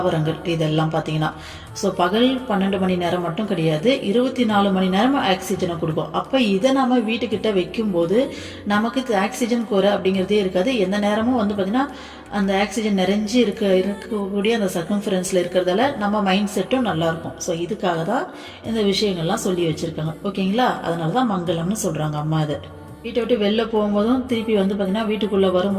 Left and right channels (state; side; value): identical; both; correlation 1.00